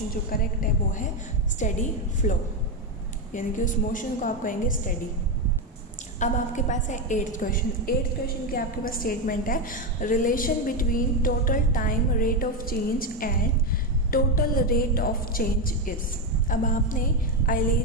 जो करेक्ट है वो है स्टेडी फ्लो, यानी कि उस मोशन को आप कहेंगे स्टेडी। अब आपके पास है 8th क्वेश्चन। 8th क्वेश्चन की आपके पास स्टेटमेंट है, relation between total time rate of change and total rate of change is. अब आपने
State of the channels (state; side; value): normal; both; correlation 0.09